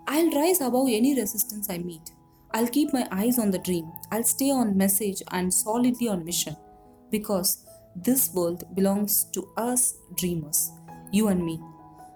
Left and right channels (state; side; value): identical; both; correlation 1.00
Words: I'll rise above any resistance I meet. I'll keep my eyes on the dream. I'll stay on message and solidly on mission. Because this world belongs to us dreamers, you and me.